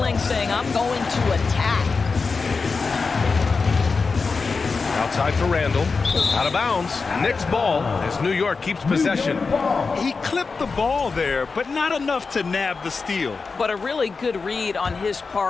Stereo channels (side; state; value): right; quieter; 4.5 dB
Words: saying, I'm going to attack. Outside for Randall. Out of bounds. Knicks ball as New York keeps possession. He clipped the ball there, but not enough to nab the steal. But a really good read on his